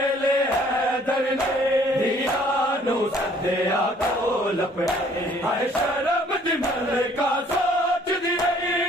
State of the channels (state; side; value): normal; both; correlation 0.59